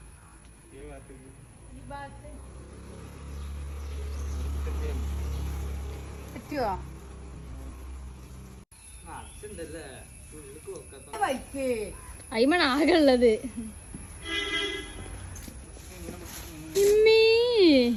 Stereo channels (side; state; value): both; identical; correlation 1.00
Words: ഈ ഭാഗത്തേക്ക് ഈ ഭാഗത്ത് പറ്റുവോ? വൈക്ക് അയിമണ് ആകെ ഉള്ളത്. ഇമ്മീ.